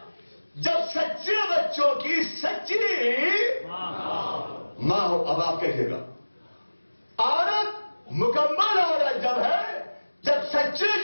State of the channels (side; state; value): both; inverted; correlation -1.00